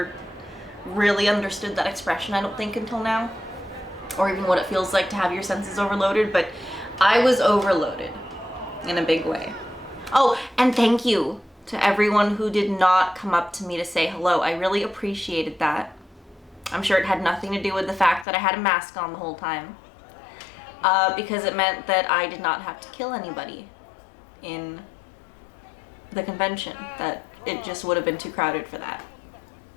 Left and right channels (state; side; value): drops out; right; at 18.2 s